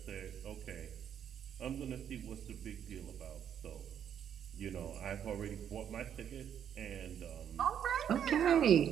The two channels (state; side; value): quieter; left; 9.0 dB